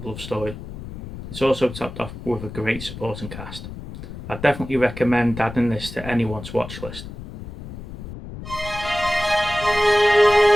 love story. It's also topped off with a great supporting cast. I definitely recommend adding this to anyone's watch list.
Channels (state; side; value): noise; left; rumble, 11 dB below the sound